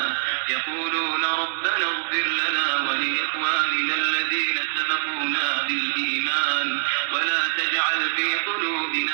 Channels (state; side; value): silent; left; digital silence